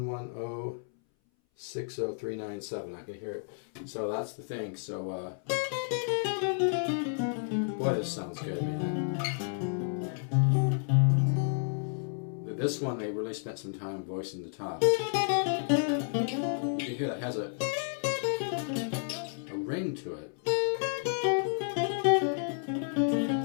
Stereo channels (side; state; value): right; silent; 57 dB below the other